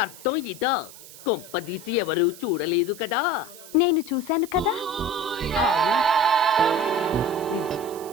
ఇదా? కొంపదీసి ఎవరు చూడలేదు కదా? నేను చూశాను కదా.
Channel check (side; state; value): right; noise; hiss, 18 dB below the sound